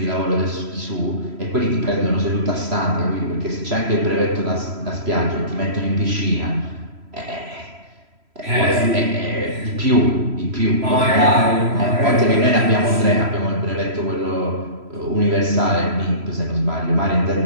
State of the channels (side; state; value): left; late; 3.0 ms